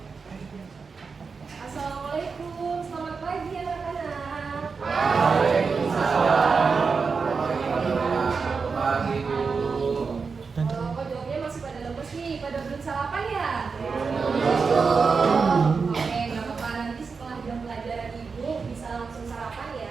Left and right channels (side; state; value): left; quieter; 5.0 dB